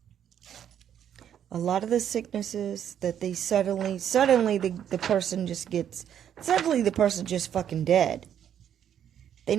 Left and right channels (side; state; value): left; quieter; 9.5 dB